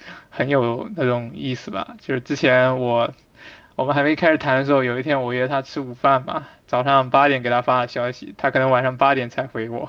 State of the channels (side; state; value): both; identical; correlation 1.00